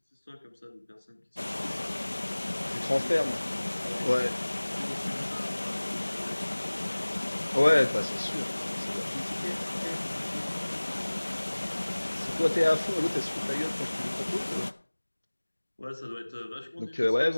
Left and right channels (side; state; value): both; inverted; correlation -1.00